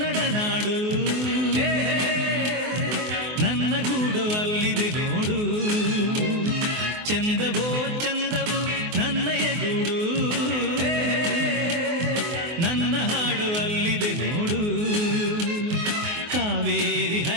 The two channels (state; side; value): late; left; 24 ms